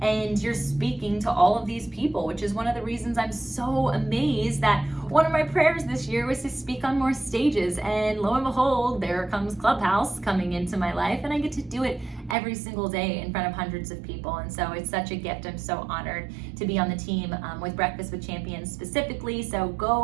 and you're speaking to all of these people, which is one of the reasons I'm so amazed that one of my prayers this year was to speak on more stages, and lo and behold, there comes Clubhouse coming into my life, and I get to do it every single day in front of hundreds of people. And so it's such a gift. I'm so honored to be on the team with Breakfast with Champions specifically. So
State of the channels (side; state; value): left; drops out; at 12.4 s